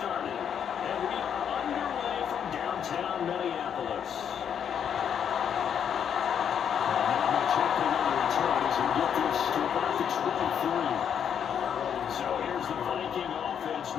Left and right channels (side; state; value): right; quieter; 8.3 dB